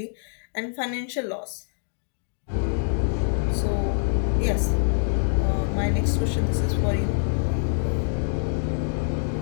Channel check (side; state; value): right; silent; digital silence